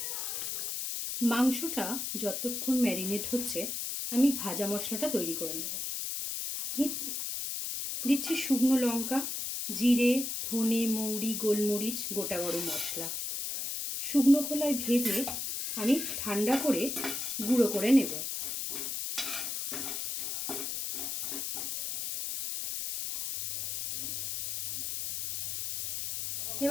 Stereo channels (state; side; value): noise; left; hiss, 3 dB below the sound